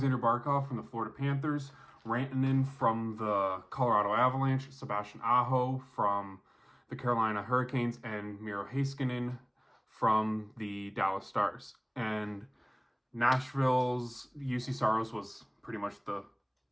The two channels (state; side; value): identical; both; correlation 1.00